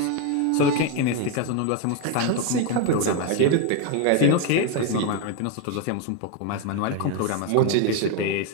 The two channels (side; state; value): both; different; correlation 0.02